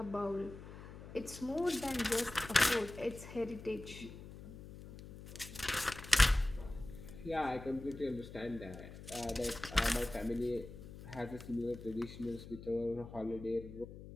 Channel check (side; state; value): left; noise; hum, 14 dB below the sound